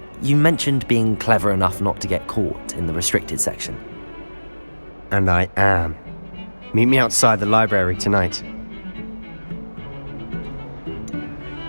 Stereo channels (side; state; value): both; inverted; correlation -1.00